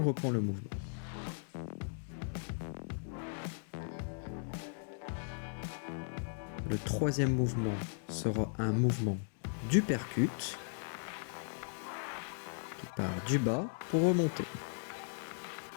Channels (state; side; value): silent; right; digital silence